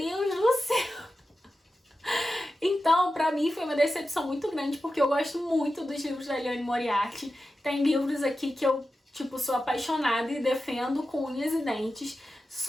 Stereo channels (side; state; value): both; normal; correlation 0.92